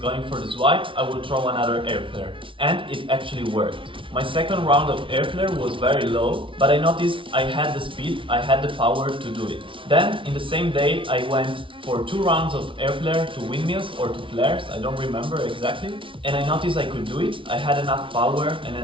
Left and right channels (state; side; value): late; left; 0.25 ms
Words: going for the swipe, I will throw another air flare. And it actually worked. My second round of air flare was very low, but I noticed I had the speed, I had the power to do it. Then, in the same day, I went for 2 rounds of air flare to windmills or to flares, I don't remember exactly. And I noticed I could do it, I had enough power